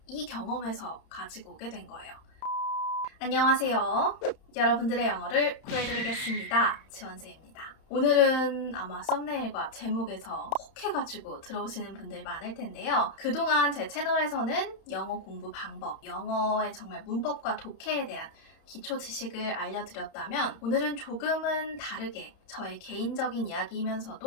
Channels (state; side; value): late; right; 31 ms